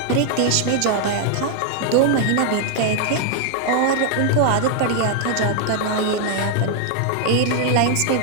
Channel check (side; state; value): both; different; correlation 0.00